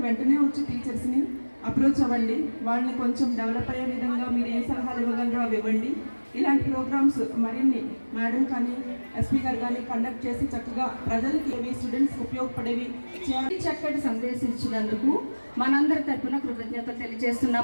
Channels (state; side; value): inverted; both; correlation -1.00